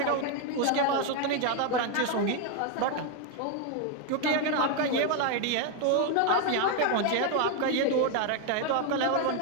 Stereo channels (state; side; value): different; both; correlation 0.01